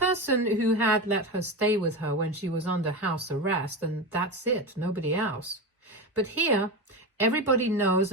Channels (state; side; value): normal; both; correlation 0.20